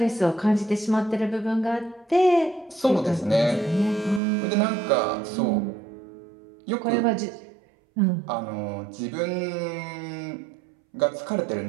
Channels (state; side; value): drops out; left; at 4.2 s